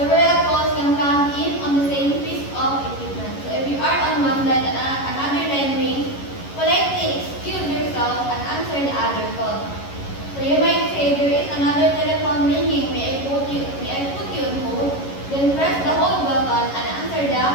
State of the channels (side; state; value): right; late; 11 ms